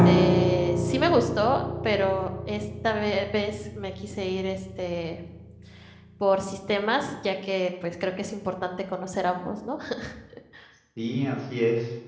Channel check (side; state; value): both; identical; correlation 1.00